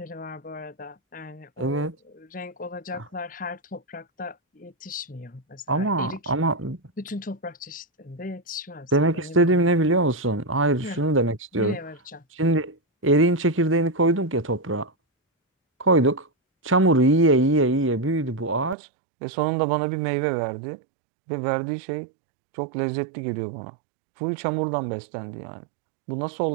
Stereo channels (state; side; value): drops out; left; at 18.8 s